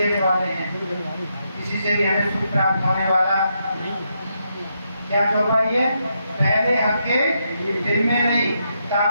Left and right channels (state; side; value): inverted; both; correlation -0.81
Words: वाले हैं, किसी से भी हमें सुख प्राप्त होने वाला क्या चौपाई है? पहले हक्के दिल में नहीं, ता